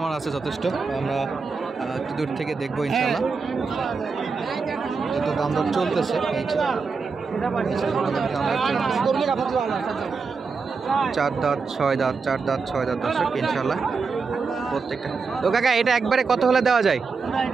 আছে যথেষ্ট, আমরা একটু দূর থেকে দেখবো ইনশাল্লাহ। যত দাম দর চলতেছে, এই যে 4 দাঁত 6 দাঁত, 4 দাঁত 6 দাঁত দর্শক ইনশাল্লাহ প্রত্যেকটা। তো কাকা এটা একবারে কত হলে দেওয়া যায়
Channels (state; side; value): quieter; left; 4.8 dB